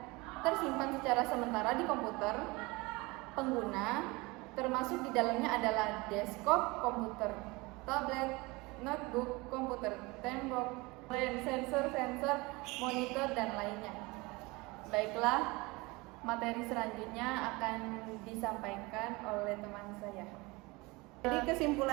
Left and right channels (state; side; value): quieter; left; 24.1 dB